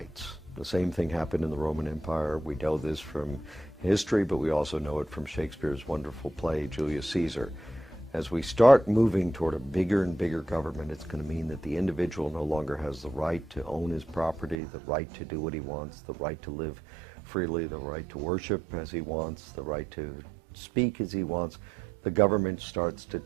The same thing happened in the Roman Empire. We know this from history, but we also know it from Shakespeare's wonderful play, Julius Caesar. As we start moving toward a bigger and bigger government, it's going to mean that the individual no longer has the right to own his property, the right to do what he wants, the right to live freely, the right to worship as he wants, the right to speak as he wants. The government starts to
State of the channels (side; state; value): left; drops out; at 14.6 s